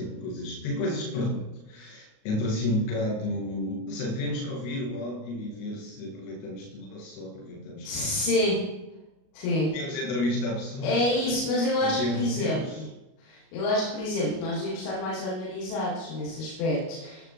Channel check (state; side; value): late; right; 38 ms